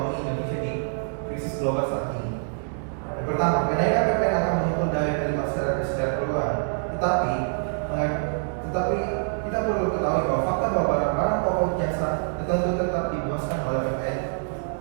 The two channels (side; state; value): left; silent; digital silence